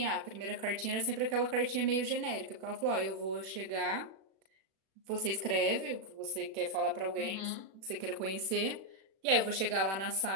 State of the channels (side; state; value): left; late; 36 ms